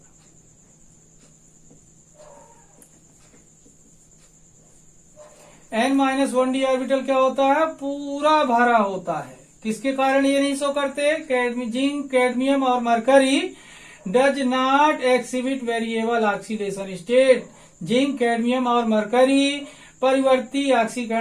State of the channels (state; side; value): identical; both; correlation 1.00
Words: n-1d orbital क्या होता है? पूरा भरा होता है। किसके कारण ये नहीं शो करते? जिंक, कैडमियम और mercury does not exhibit variable oxidation state. Zinc, cadmium और मरकरी परिवर्ती